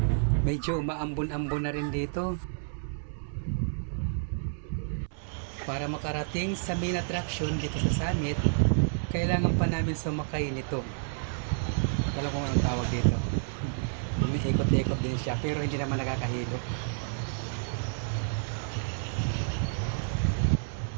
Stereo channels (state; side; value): silent; left; 58 dB below the other